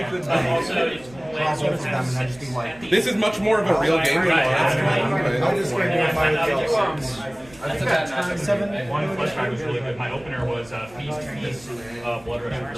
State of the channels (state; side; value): noise; right; rumble, 23 dB below the sound